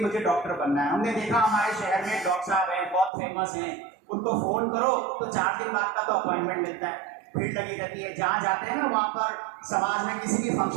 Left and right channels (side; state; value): left; drops out; at 3.1 s